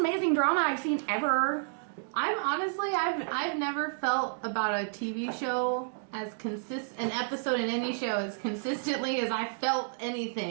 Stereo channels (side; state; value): left; silent; digital silence